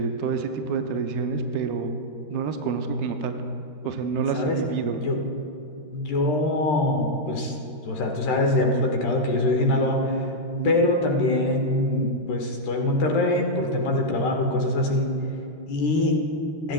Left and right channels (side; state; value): right; late; 13 ms